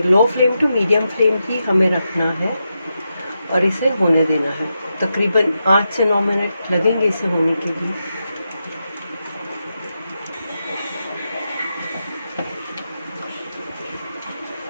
low flame to medium flame ही हमें रखना है और इसे होने देना है। तकरीबन 8 से 9 मिनट लगेंगे इसे होने के लिए।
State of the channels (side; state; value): both; inverted; correlation -0.87